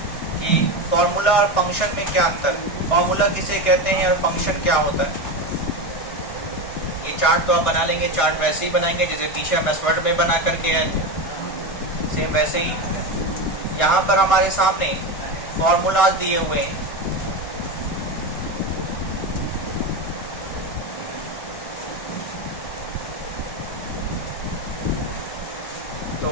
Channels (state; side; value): late; right; 1.6 ms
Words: कि फॉर्मूला और फंक्शन में क्या अंतर है, फॉर्मूला किसे कहते हैं और फंक्शन क्या होता है। ये चार्ट तो आप बना लेंगे, चार्ट वैसे ही बनाएंगे जैसे पीछे हम एसवर्ड में बना करके आए थे, सेम वैसे ही यहाँ पर हमारे सामने फॉर्मूलाज दिए हुए हैं। तो